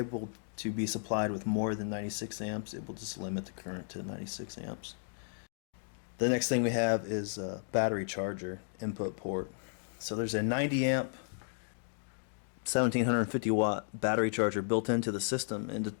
to be supplied with more than 96 amps, it will just limit the current to 96 amps. The next thing we have is a battery charger input port. So there's a 90 amp 1750 watt battery charger built into the system, and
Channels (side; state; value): right; silent; digital silence